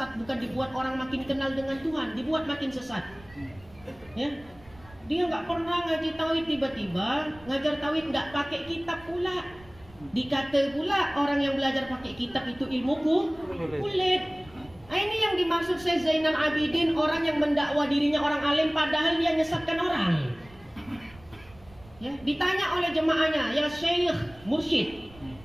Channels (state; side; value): noise; right; rumble, 23 dB below the sound